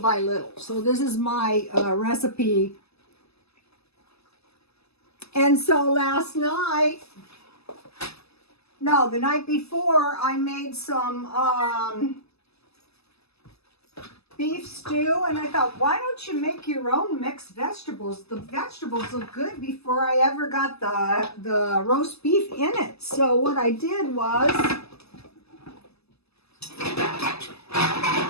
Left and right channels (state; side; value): late; right; 0.79 ms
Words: little. So this is my recipe. And so last night, no, the night before, I made some beef stew, and I thought, why don't you make your own mixed vegetables? The vegetables look good before I ever got the roast beef in it. So what I did was,